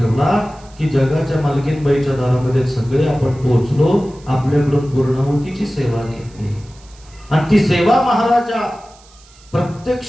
की जगाच्या मालकीनबाईच्या दारामध्ये सगळे आपण पोहोचलो. आपल्याकडून पूर्णाहुतीची सेवा घेतली आणि ती सेवा महाराजा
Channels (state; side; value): noise; right; hiss, 27 dB below the sound